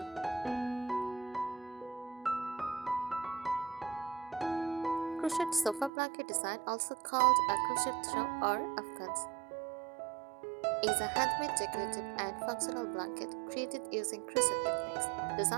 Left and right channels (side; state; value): left; drops out; at 5.9 s